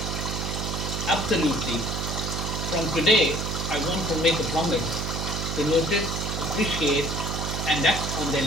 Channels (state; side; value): noise; right; hum, 3 dB below the sound